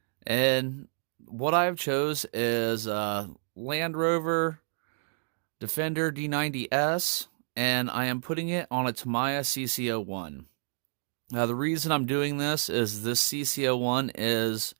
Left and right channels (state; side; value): silent; left; digital silence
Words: And what I've chose is Land Rover Defender D90S, and I am putting it on a Tamiya CC-01. Now the reason I'm doing this is this CC-01 is